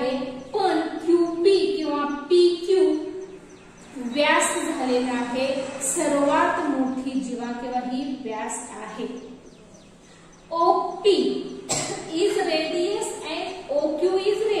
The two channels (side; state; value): both; identical; correlation 1.00